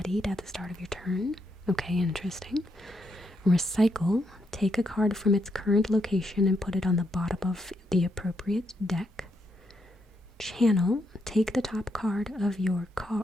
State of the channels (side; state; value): both; normal; correlation 0.79